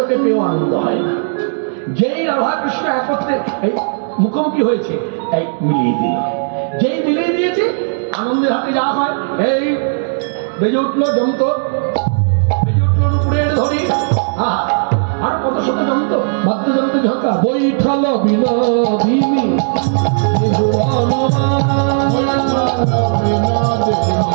পেয়েও আনন্দ হয় না। যেই রাধা কৃষ্ণ একত্রে এই মুখোমুখি হয়েছে, এই মিলিয়ে দিল, যেই মিলিয়ে দিয়েছে আনন্দের হাতে যা হয়, এই বেজে উঠলো যন্ত্র, বেজে উঠলো উপরের ধরি, আর কত শত যন্ত্র, বাদ্যযন্ত্র ঝঙ্কা, বৈঠাল বিনোদিনী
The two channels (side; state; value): left; silent; digital silence